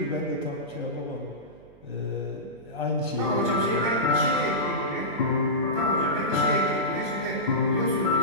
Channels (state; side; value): noise; right; hum, 25 dB below the sound